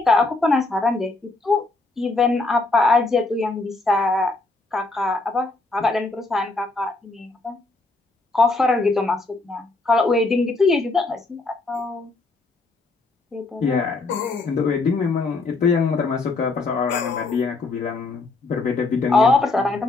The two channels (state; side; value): quieter; right; 3.4 dB